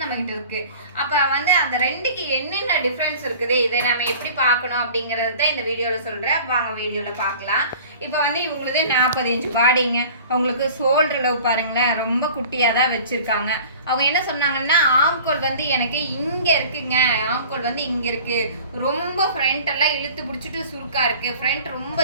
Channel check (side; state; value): both; inverted; correlation -0.44